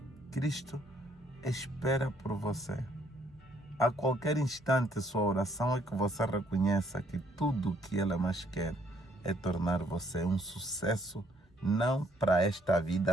Cristo espera por você. A qualquer instante, sua oração é que você reconheça que tudo o que Ele mais quer é tornar você um sucesso, não para esta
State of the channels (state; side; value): normal; both; correlation 0.67